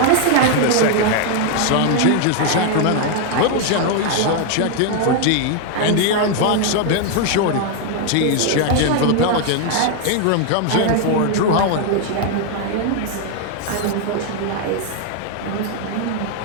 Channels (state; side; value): different; both; correlation 0.00